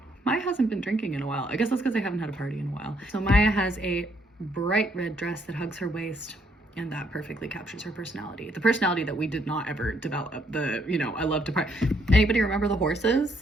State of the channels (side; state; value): both; normal; correlation 0.71